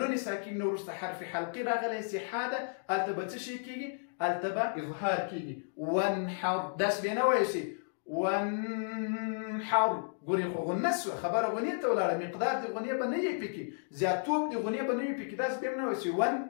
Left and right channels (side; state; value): right; silent; digital silence